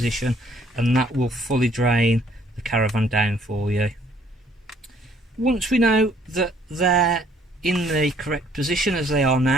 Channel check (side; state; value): both; normal; correlation 0.63